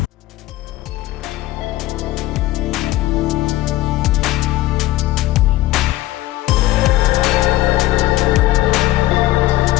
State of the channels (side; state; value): right; quieter; 16.5 dB